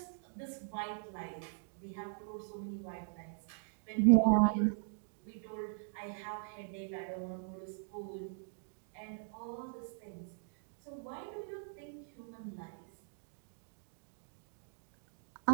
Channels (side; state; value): left; silent; digital silence